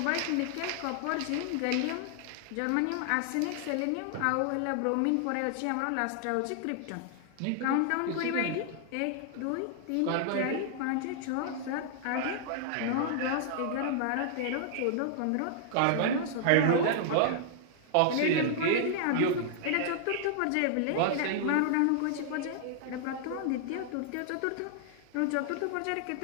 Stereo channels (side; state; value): both; different; correlation -0.01